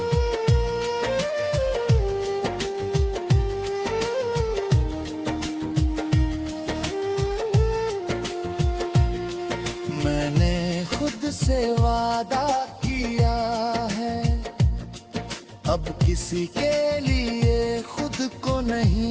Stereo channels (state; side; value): identical; both; correlation 1.00